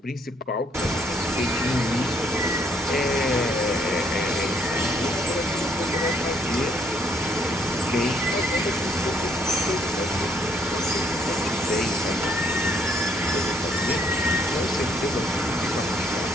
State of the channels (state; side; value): normal; both; correlation 0.68